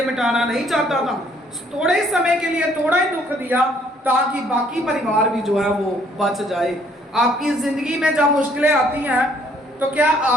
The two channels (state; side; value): normal; both; correlation 0.64